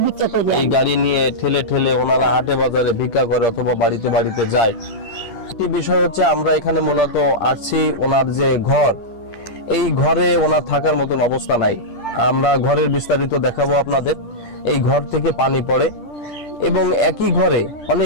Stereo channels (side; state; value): right; late; 10 ms